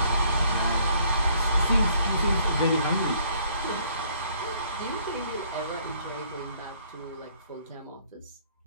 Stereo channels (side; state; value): both; inverted; correlation -0.62